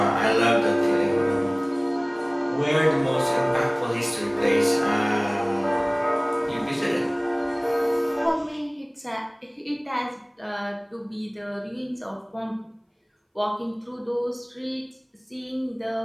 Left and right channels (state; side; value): identical; both; correlation 1.00